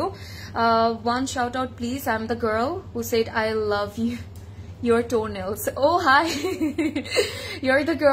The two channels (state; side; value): identical; both; correlation 1.00